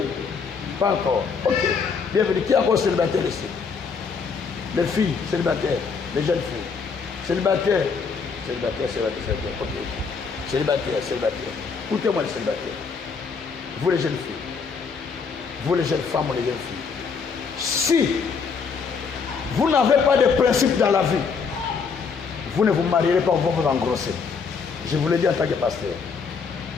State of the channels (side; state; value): right; quieter; 5.5 dB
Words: pas encore. Ok, bienvenue. Qui est encore célibataire ici? Les filles célibataires, les jeunes filles. Célibataires, ok. Célibataire. Écoutez-moi les célibataires. Vous les jeunes filles, vous les jeunes femmes ou les jeunes filles. Si vous n'avez pas de principe dans la vie, vous ne vous marierez pas, vous vous engrossez. Je vous l'ai dit en tant que pasteur.